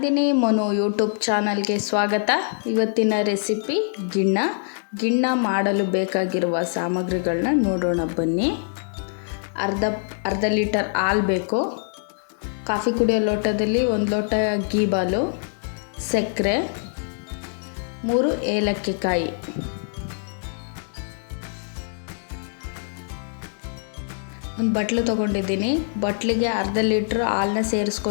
Manu YouTube ಚಾನಲ್ಗೆ ಸ್ವಾಗತ. ಇವತ್ತಿನ ರೆಸಿಪಿ ಗಿಣ್ಣ ಮಾಡಲು ಬೇಕಾಗಿರುವ ಸಾಮಗ್ರಿಗಳನ್ನ ನೋಡೋಣ ಬನ್ನಿ. ಅರ್ಧ ಲೀಟರ್ ಹಾಲು ಬೇಕು. ಕಾಫಿ ಕುಡಿಯೋ ಲೋಟದಲ್ಲಿ 1 ಲೋಟ ಗೀ ಬಾಲು, ಸಕ್ಕರೆ, 3 ಏಲಕ್ಕಿ ಕಾಯಿ, ಒಂದು ಬಟ್ಲು ತೊಗೊಂಡಿದ್ದೀನಿ. ಬಟ್ಲಿಗೆ ಅರ್ಧ ಲೀಟ್ರ್ ಹಾಲನ್ನ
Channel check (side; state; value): right; silent; digital silence